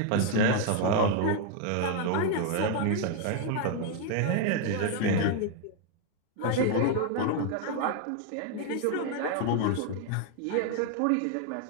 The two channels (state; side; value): different; both; correlation 0.01